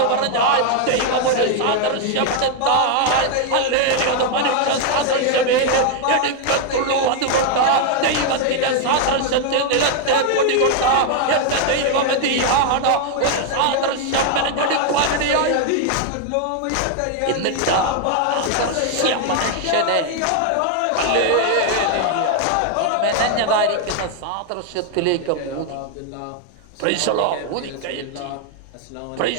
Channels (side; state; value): both; different; correlation 0.00